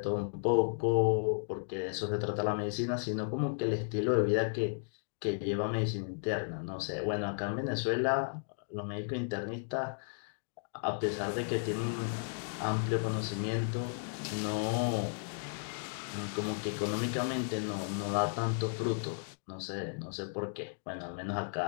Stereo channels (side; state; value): right; silent; digital silence